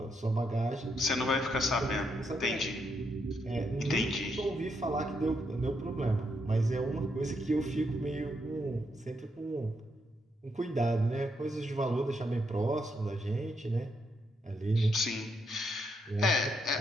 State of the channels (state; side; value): normal; both; correlation 0.78